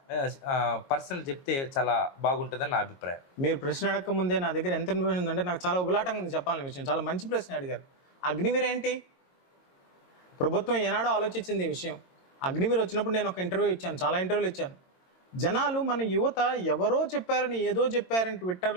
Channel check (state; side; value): late; right; 22 ms